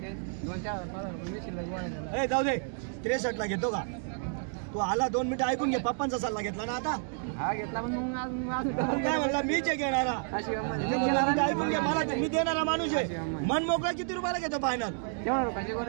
जाऊ दे 63 ला घेतो का तू आला 2 मिनिटं ऐकून घे पप्पांचा सल्ला घेतला ना आता हा घेतला पण काय म्हणला मीच घेणारा ऐकून घे मला मी देणारा माणूस आहे मन मोकळा किती रुपयाला घेतो फायनल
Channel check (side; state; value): left; silent; 57 dB below the other